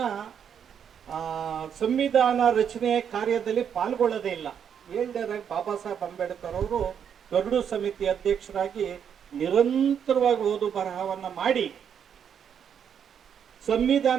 ಸಂವಿಧಾನ ರಚನೆ ಕಾರ್ಯದಲ್ಲಿ ಪಾಲ್ಗೊಳ್ಳೋದೇ ಇಲ್ಲ. 7ನೇದಾಗಿ ಬಾಬಾ ಸಾಹೇಬ್ ಅಂಬೇಡ್ಕರ್ ಅವರು ಗರುಡು ಸಮಿತಿ ಅಧ್ಯಕ್ಷರಾಗಿ ನಿರಂತರವಾಗಿ ಓದು ಬರಹವನ್ನ ಮಾಡಿ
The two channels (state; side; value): quieter; left; 8.1 dB